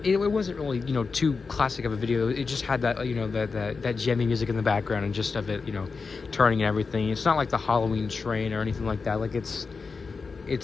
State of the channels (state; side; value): quieter; right; 4.7 dB